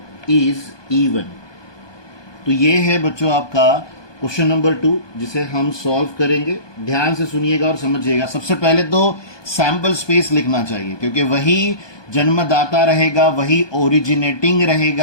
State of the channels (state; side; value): late; right; 1.2 ms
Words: is even. तो ये है बच्चों आपका क्वेश्चन नंबर 2 जिसे हम सॉल्व करेंगे। ध्यान से सुनिएगा और समझिएगा। सबसे पहले तो सैंपल स्पेस लिखना चाहिए, क्योंकि वही जन्मदाता रहेगा, वही ओरिजिनेटिंग